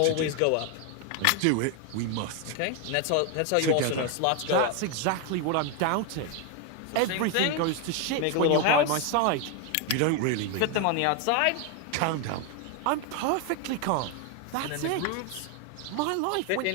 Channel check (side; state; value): both; different; correlation 0.01